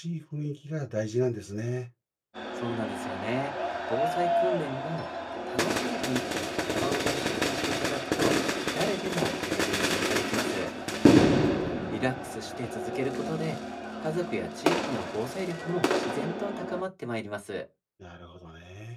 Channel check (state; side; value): identical; both; correlation 1.00